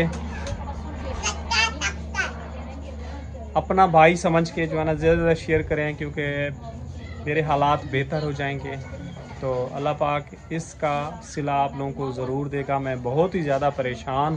के जो है ना ज़्यादा शेयर करें, क्योंकि मेरे हालात बेहतर हो जाएंगे तो अल्लाह पाक इसका सिला आप लोगों को ज़रूर देगा। मैं बहुत ही ज़्यादा परेशान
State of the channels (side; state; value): both; identical; correlation 1.00